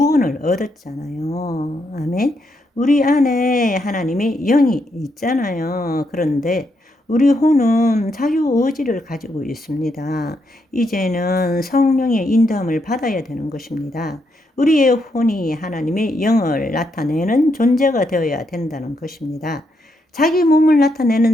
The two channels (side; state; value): both; normal; correlation 0.79